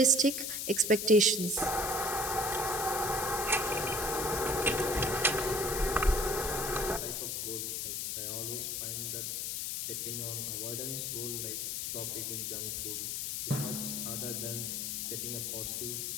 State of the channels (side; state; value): left; noise; hiss, 2 dB below the sound